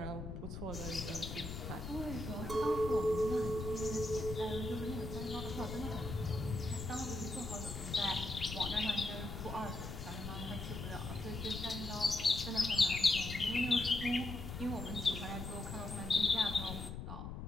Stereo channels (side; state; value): left; noise; rumble, 7 dB below the sound